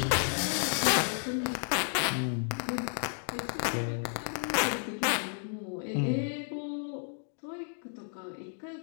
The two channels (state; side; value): silent; right; 56 dB below the other